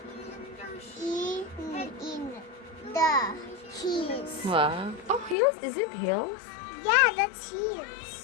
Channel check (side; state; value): right; drops out; at 5.4 s